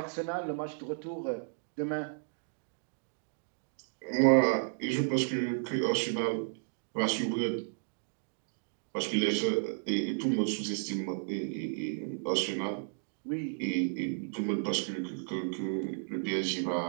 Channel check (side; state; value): left; silent; digital silence